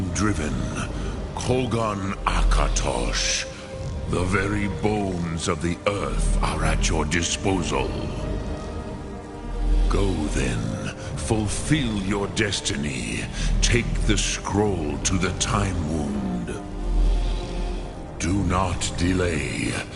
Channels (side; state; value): both; identical; correlation 1.00